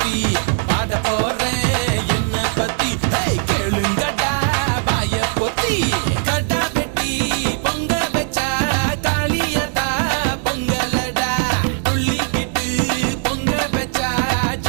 பாட போறேன் என்ன பத்தி கேளுங்கடா வாய பொத்தி கடா வெட்டி பொங்க வச்சா காளியடா பொங்கலடா துள்ளிக்கிட்டு பொங்க வச்சா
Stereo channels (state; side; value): silent; left; 55 dB below the other